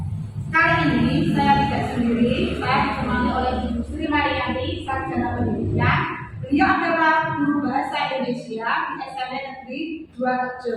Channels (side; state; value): both; identical; correlation 1.00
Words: Kali ini saya tidak sendiri, saya ditemani oleh Ibu Sri Marianti, Sarjana Pendidikan. Beliau adalah guru bahasa Indonesia di SMP Negeri 2